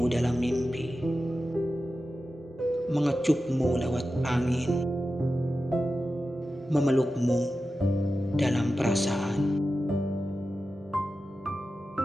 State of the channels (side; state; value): both; normal; correlation 0.92